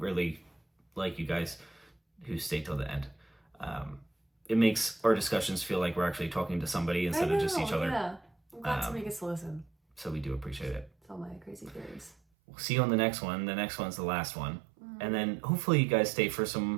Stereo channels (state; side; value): drops out; left; at 12.2 s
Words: like you guys who stay till the end. It makes our discussions feel like we're actually talking to somebody instead of just each other. Yeah. I'm glad somebody gets to listen. So we do appreciate it. It's all my crazy theories. We'll see you on the next one. The next one's the last one. And then hopefully you guys stay for